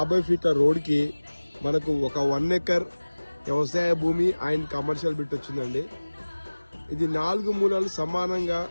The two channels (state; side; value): inverted; both; correlation -1.00